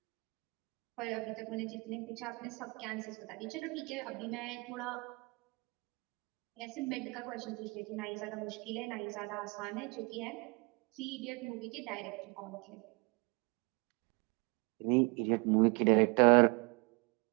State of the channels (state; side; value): quieter; left; 30.4 dB